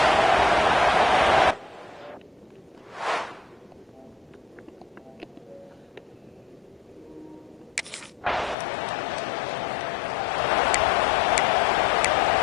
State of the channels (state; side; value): drops out; right; at 8.6 s